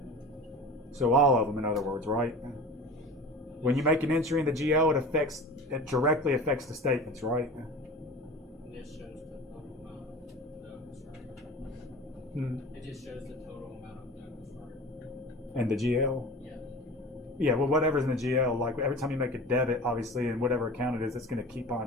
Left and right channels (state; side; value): normal; both; correlation 0.36